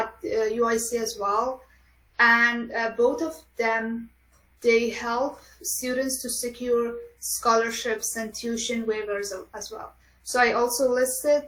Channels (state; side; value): identical; both; correlation 1.00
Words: UIC as well. And both of them, they help students to secure scholarships and tuition waivers as well. So I also listed